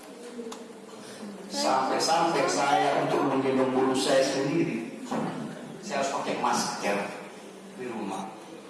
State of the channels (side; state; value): both; identical; correlation 1.00